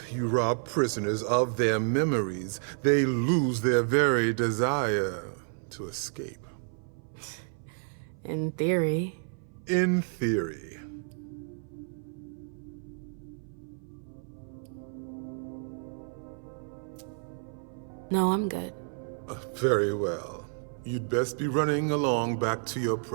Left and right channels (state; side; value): silent; left; 57 dB below the other